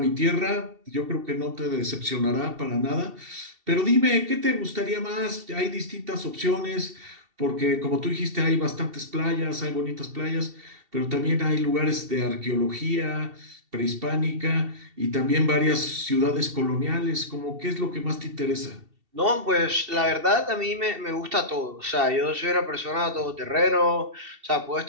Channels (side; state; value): left; late; 2.7 ms